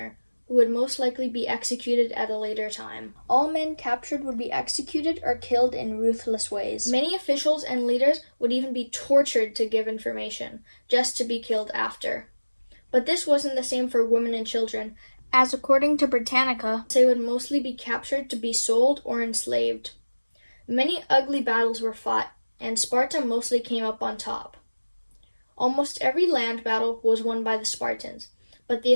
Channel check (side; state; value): both; inverted; correlation -1.00